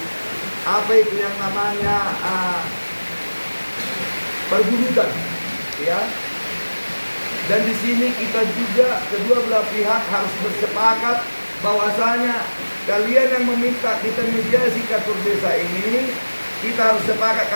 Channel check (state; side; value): inverted; both; correlation -1.00